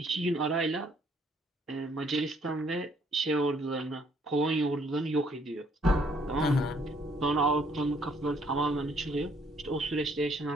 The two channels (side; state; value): both; normal; correlation 0.65